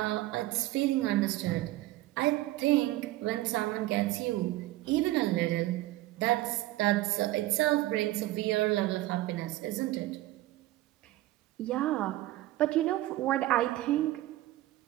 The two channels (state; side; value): quieter; left; 16.9 dB